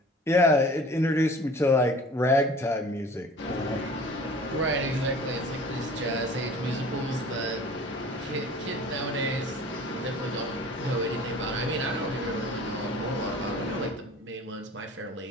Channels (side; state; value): both; normal; correlation 0.45